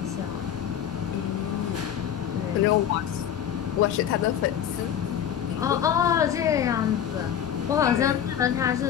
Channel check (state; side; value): quieter; right; 9.4 dB